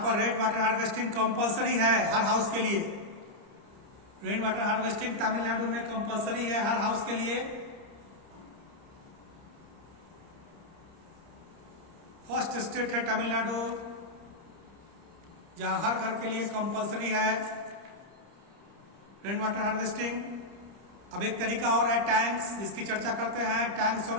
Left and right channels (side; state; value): left; late; 30 ms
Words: रेन वाटर हार्वेस्टिंग कंपलसरी है हर हाउस के लिए। रेन वाटर हार्वेस्टिंग तमिलनाडु में कंपलसरी है हर हाउस के लिए। फर्स्ट स्टेट है तमिलनाडु जहां हर घर के लिए कंपलसरी है रेन वाटर हार्वेस्टिंग। अब एक तरीका और है टैंक्स, जिसकी चर्चा करते हैं। टैंक्स और